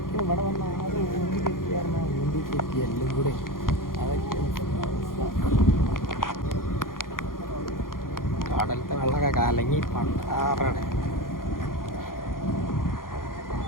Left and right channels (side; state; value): right; late; 0.91 ms